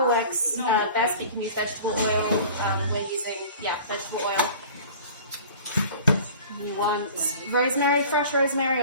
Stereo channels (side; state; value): both; inverted; correlation -0.43